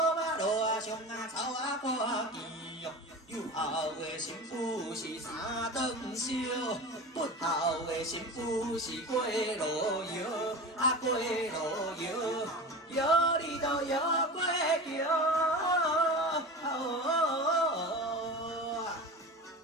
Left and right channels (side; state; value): both; normal; correlation 0.31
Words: 马路啊，上啊，草啊，看见哟。有孝的媳妇是三顿烧，不孝的媳妇是过路摇，过路摇，摇你都摇过桥。